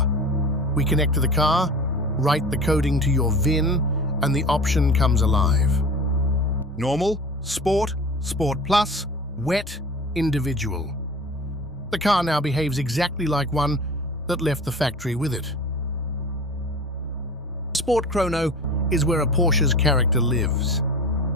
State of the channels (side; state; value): both; normal; correlation 0.37